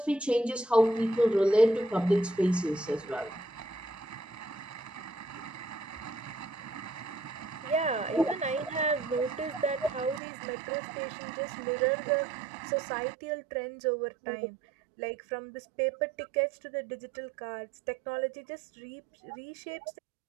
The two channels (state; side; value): drops out; left; at 10.2 s